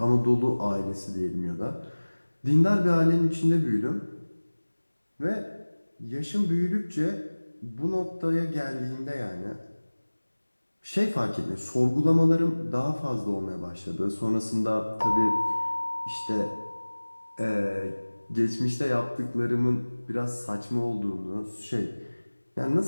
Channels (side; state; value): both; inverted; correlation -1.00